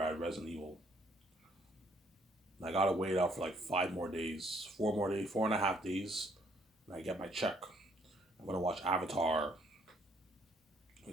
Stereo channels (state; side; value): normal; both; correlation 0.66